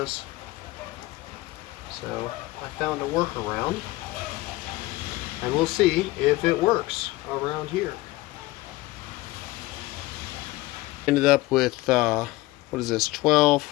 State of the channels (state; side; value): quieter; right; 19.1 dB